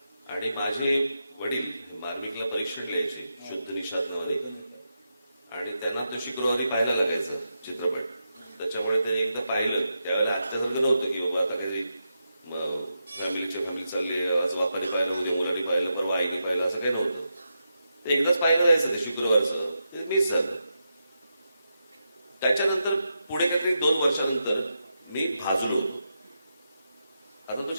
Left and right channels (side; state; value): both; inverted; correlation -0.86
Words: आणि माझे वडील मार्मिकला परीक्षण लिहायचे शुद्ध निषादमध्ये, आणि त्यांना तो शुक्रवारी पाहायला लागायचा चित्रपट. त्याच्यामुळे त्यांनी एकदा पाहिलं, त्यावेळेला आजच्यासारखं नव्हतं की बाबा आता काही फॅमिली चालले, आज बापाने पाहिलं, उद्या मुलांनी पाहिलं, परवा आईने पाहिलं, असं काही नव्हतं. ते एकदाच पाहायला जायचं ते शुक्रवारचं, ते मिस झालं. त्याच्यानंतर पुढे काहीतरी 2 वर्षानंतर मी भाजलो होतो. आता तो